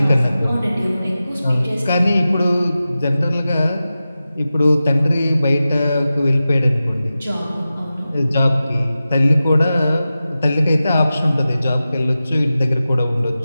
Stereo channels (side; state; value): both; inverted; correlation -0.94